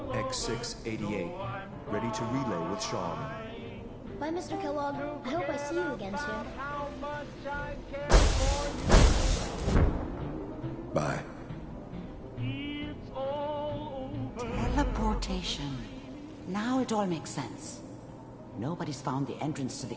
X688. Ready to relay with Sean. Bye, Mr. Kellogg. I hope I see you again soon. Bye. Teleportation. Now it all makes sense. Nobody's found the entrance to the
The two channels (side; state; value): both; identical; correlation 1.00